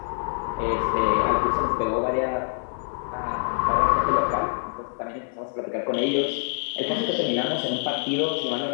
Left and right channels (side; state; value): right; silent; digital silence